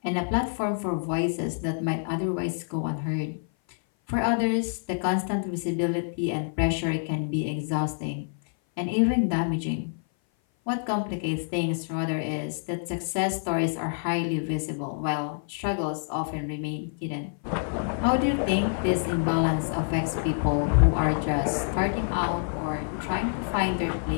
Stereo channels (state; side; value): silent; right; 57 dB below the other